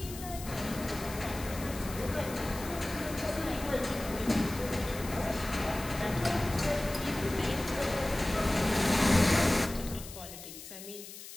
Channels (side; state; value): left; noise; hiss, 13 dB below the sound